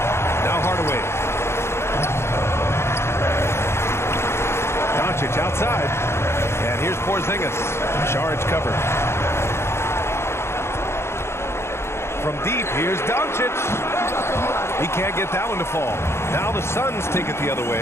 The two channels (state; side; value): late; right; 0.12 ms